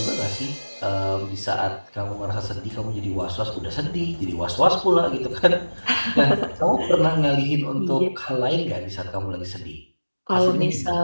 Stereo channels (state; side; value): inverted; both; correlation -1.00